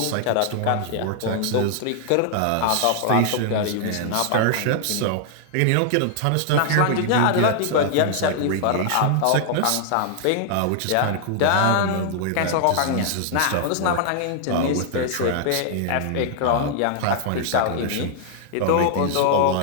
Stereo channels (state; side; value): different; both; correlation -0.01